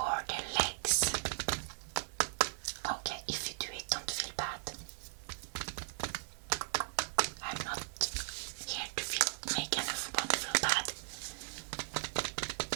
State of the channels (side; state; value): left; silent; digital silence